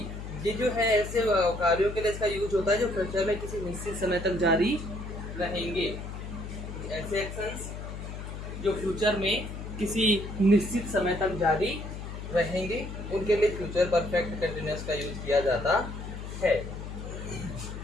ये जो है ऐसे कार्यों के लिए इसका यूज होता है जो फ्यूचर में किसी निश्चित समय तक जारी रहेंगे। ऐसे एक्शंस जो फ्यूचर में किसी निश्चित समय तक जारी रहेंगे उनके लिए फ्यूचर परफेक्ट कंटिन्यूअस का यूज किया जाता है।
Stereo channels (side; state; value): left; noise; hum, 8 dB below the sound